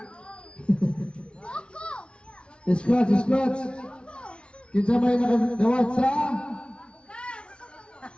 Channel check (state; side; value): late; right; 0.058 ms